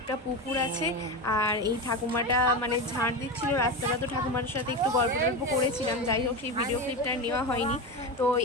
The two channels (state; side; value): normal; both; correlation 0.19